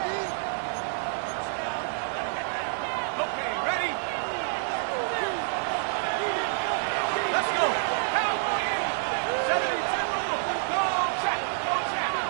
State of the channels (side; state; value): left; silent; digital silence